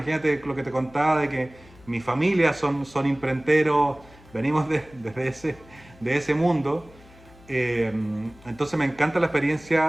lo que te contaba de que mi familia son imprenteros, venimos de ese mundo. Entonces me encanta la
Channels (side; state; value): left; noise; hum, 24 dB below the sound